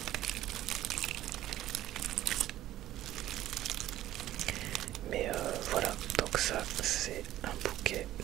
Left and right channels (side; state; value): left; quieter; 13.9 dB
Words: Mais voilà, donc ça c'est un bouquet